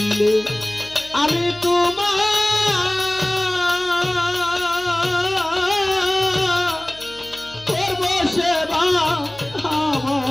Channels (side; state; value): left; noise; hum, 24 dB below the sound